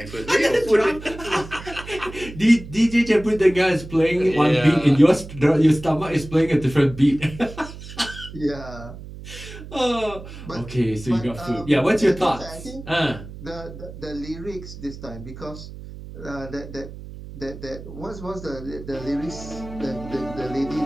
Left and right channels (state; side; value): noise; right; hum, 13 dB below the sound